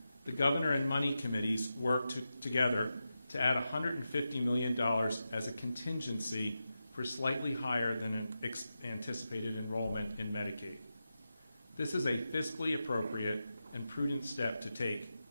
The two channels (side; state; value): both; inverted; correlation -0.90